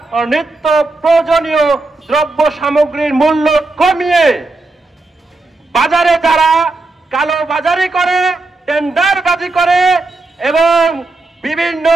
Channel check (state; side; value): quieter; left; 3.3 dB